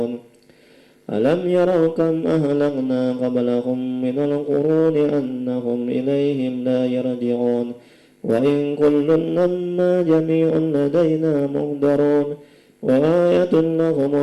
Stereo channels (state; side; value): identical; both; correlation 1.00